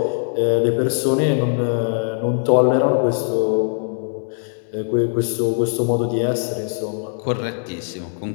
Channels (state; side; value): silent; right; digital silence